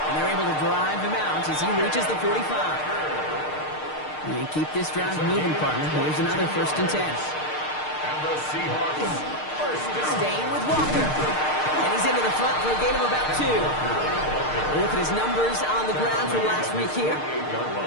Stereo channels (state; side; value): late; right; 6.6 ms